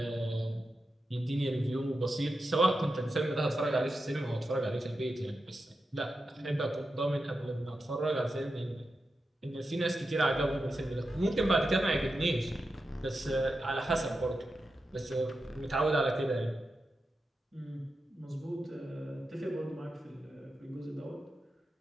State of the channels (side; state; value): both; normal; correlation 0.89